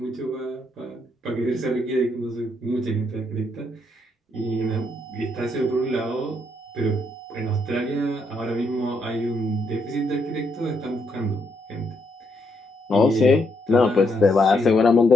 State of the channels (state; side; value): normal; both; correlation 0.76